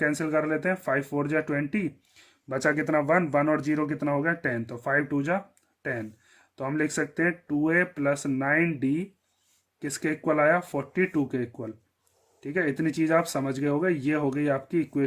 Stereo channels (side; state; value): both; identical; correlation 1.00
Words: कर लेते हैं, 5 4 जा 20, बचा कितना 1, 1 और 0 कितना हो गया 10, तो 5 2 जा 10, तो हम लिख सकते हैं 2a प्लस 9d किसके इक्वल आया 42 के इक्वल। ठीक है, इतनी चीज आप समझ गए होगे। ये हो गई आपकी